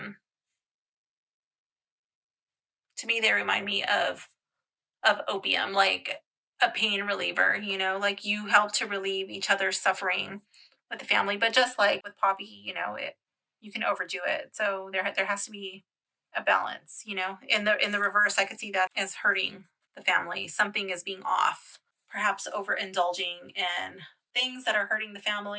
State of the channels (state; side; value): identical; both; correlation 1.00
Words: to me, they remind me of opium, like a pain reliever, you know, like you help to relieve each other's suffering with the family. But just like with poppy, you know, you can overdo it. So there has to be a balance, you know. In the reverse, I could see that as hurting the family. Something is being off, perhaps overindulging in things that are hurting the